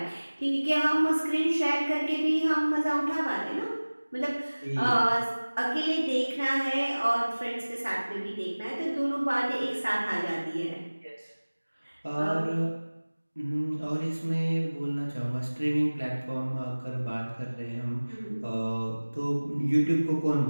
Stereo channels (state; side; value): inverted; both; correlation -1.00